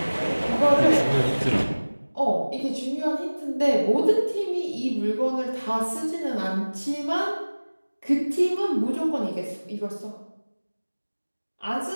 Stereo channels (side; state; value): both; inverted; correlation -1.00